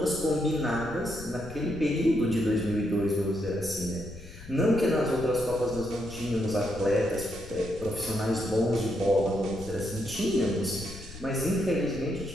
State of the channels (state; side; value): noise; left; rumble, 15 dB below the sound